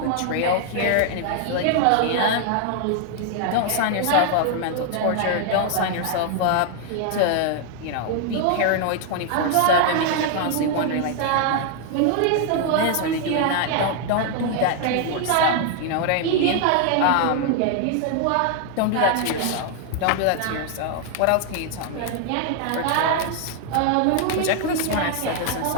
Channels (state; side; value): different; both; correlation 0.00